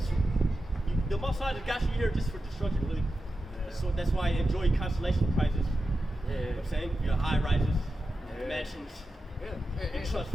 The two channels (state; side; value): normal; both; correlation 0.91